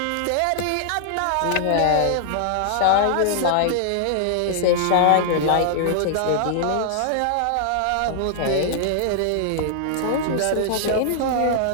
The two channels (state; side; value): different; both; correlation -0.01